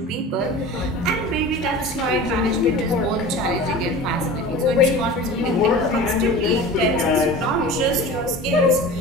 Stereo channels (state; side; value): normal; both; correlation 0.36